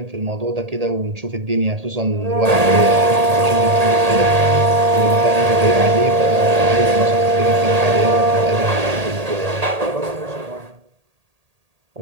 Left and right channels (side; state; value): left; late; 1.8 ms